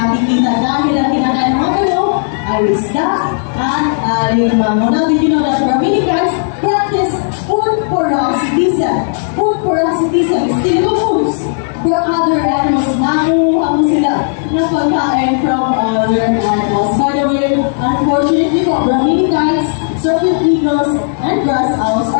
Now, did you know that Brahminians practice food parasitism? Food parasitism is stealing of foods for other animals. Nakuha mo sila ng pagkain from other animals. By the way, unfortunately for Brahminians, certain eagles and grass owls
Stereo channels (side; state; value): right; silent; digital silence